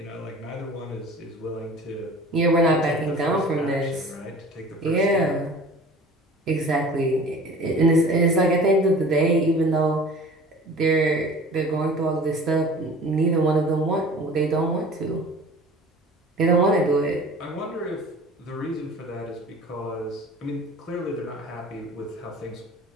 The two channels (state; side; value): normal; both; correlation 0.44